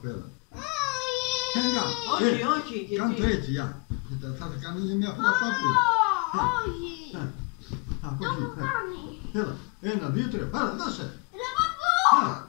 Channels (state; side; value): quieter; right; 30.6 dB